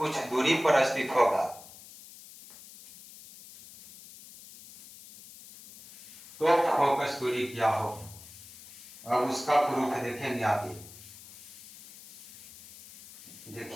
दूरी पर स्थित होगा तो फोकस दूरी क्या हो। अब उसका प्रूफ देखेंगे आगे।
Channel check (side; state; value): left; noise; hiss, 18 dB below the sound